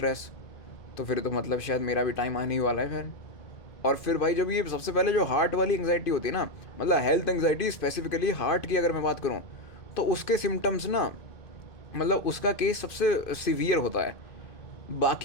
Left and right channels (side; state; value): right; late; 2.5 ms